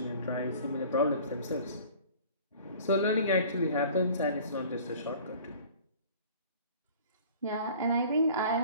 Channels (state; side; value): inverted; both; correlation -0.46